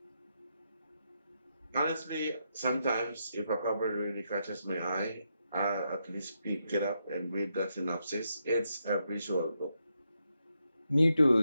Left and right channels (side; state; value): both; inverted; correlation -0.82